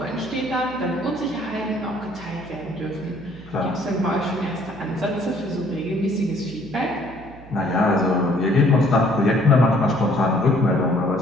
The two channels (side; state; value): right; noise; hum, 19 dB below the sound